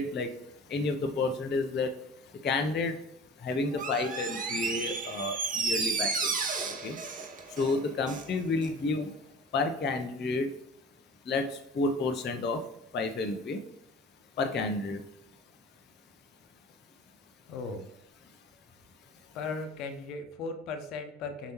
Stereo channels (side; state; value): both; normal; correlation 0.41